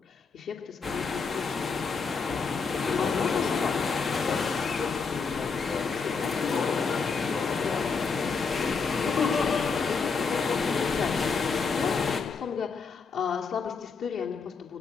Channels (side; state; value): right; quieter; 5.1 dB